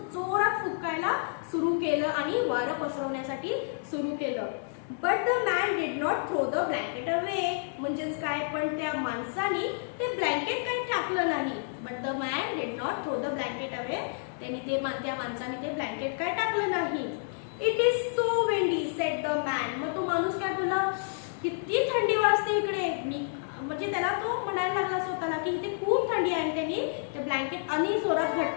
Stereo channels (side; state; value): right; silent; digital silence